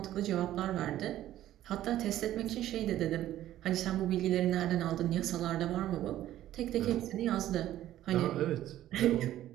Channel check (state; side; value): quieter; left; 13.2 dB